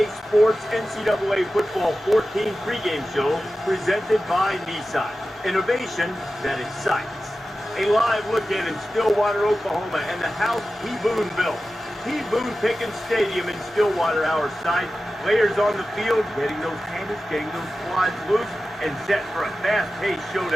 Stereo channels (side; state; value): both; normal; correlation 0.94